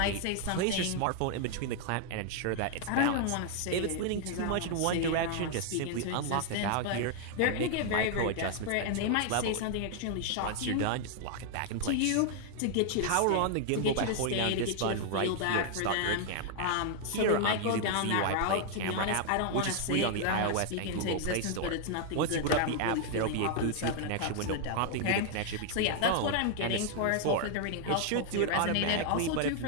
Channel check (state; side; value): different; both; correlation 0.00